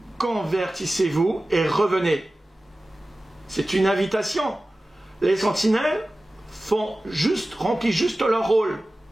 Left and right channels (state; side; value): normal; both; correlation 0.96